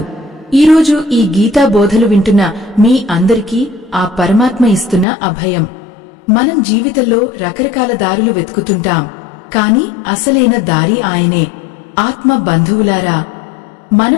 ఈరోజు ఈ గీతా బోధలు వింటున్న మీ అందరికీ ఆ పరమాత్మ ఇస్తున్న అభయం. మనం జీవితంలో రకరకాల దారులు వెతుకుతుంటాం, కాని అసలైన దారి ఆయనే. ఆత్మ బంధువులారా,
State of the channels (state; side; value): drops out; right; at 5.1 s